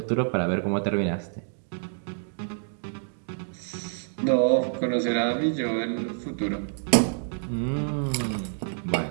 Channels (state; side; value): silent; left; digital silence